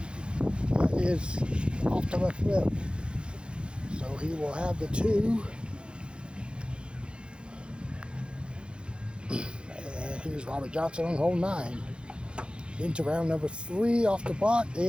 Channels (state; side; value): late; left; 0.055 ms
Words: off the left lip. So he will have the 2. And here's Robert Johnson on hole 9. Into round number 3 off the block.